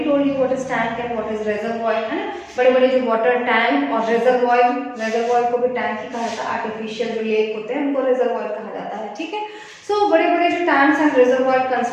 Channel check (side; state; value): both; identical; correlation 1.00